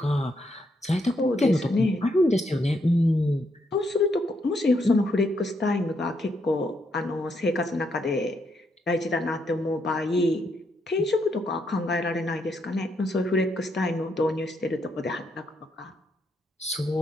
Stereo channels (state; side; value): normal; both; correlation 0.77